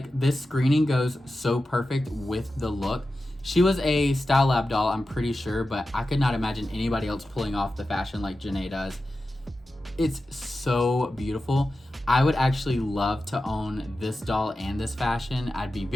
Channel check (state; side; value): normal; both; correlation 0.93